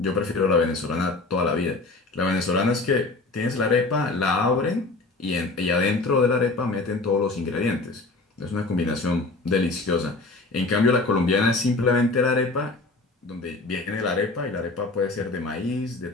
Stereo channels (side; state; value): right; quieter; 3.3 dB